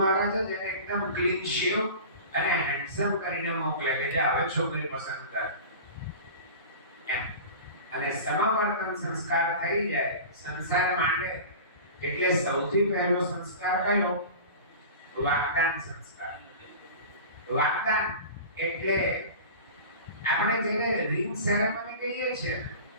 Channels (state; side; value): inverted; both; correlation -0.35